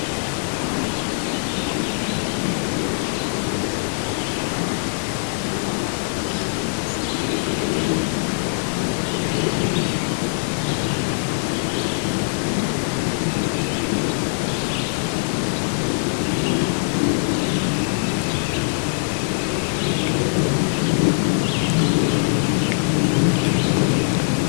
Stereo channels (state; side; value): silent; right; digital silence